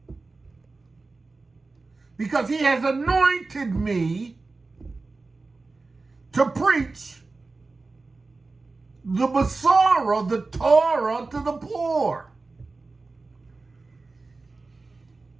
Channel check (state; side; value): quieter; left; 3.7 dB